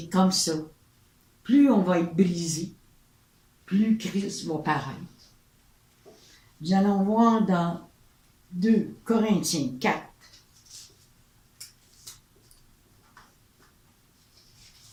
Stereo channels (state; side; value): identical; both; correlation 1.00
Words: comme ça. Plus on va être brisé, plus Christ va paraître. Nous allons voir dans 2 Corinthiens 4.